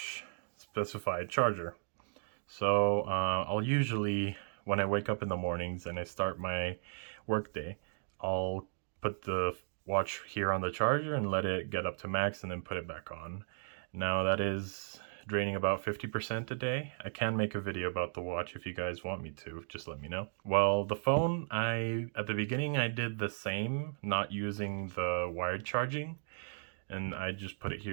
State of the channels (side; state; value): left; silent; digital silence